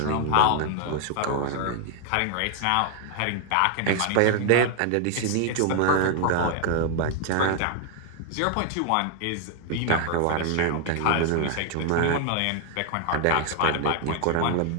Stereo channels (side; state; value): both; different; correlation 0.00